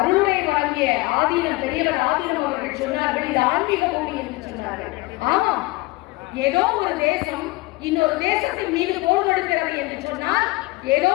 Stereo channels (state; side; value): quieter; right; 21.9 dB